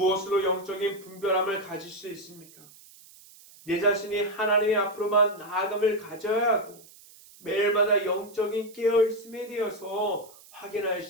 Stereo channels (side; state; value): right; noise; hiss, 23 dB below the sound